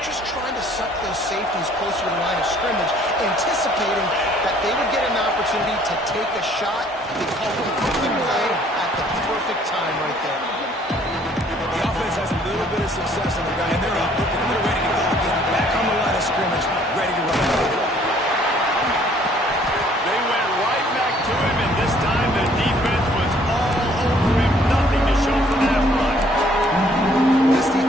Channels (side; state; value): both; normal; correlation 0.60